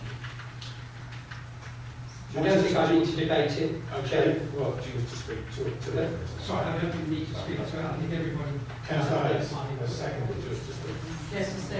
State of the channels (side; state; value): both; identical; correlation 1.00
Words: you. I don't think I need to debate it. Okay, well, do you wish to speak to that? Sorry, I don't think we need to speak to it. I think everybody... Councillor Hayes, a second to just to speak. Yes, to